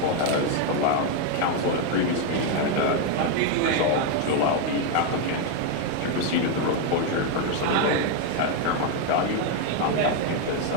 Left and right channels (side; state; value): both; different; correlation 0.01